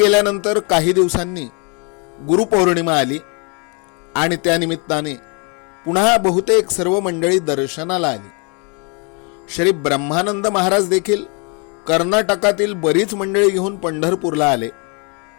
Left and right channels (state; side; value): quieter; right; 34.3 dB